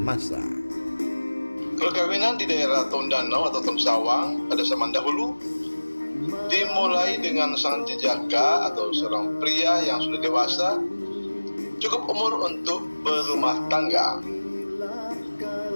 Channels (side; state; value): both; inverted; correlation -1.00